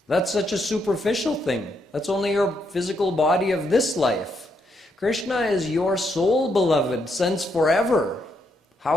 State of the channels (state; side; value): normal; both; correlation 0.77